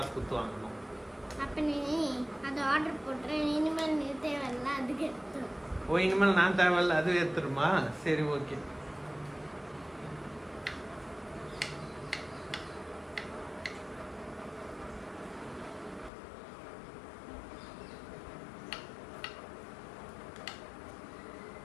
கொடுத்து வாங்கணும்? அப்போ நீ அதை ஆர்டர் போட்டுறேன். இனிமேல் நீ தேவையில்ல, அதுக்கு எடுத்துரும். ஓ, இனிமேல் நான் தேவையில்ல அது எடுத்துருமா? சரி, ஓகே.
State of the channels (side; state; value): right; drops out; at 16.1 s